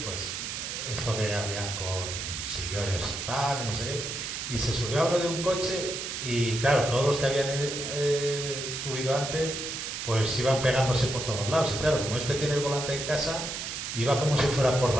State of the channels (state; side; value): noise; right; hiss, 5 dB below the sound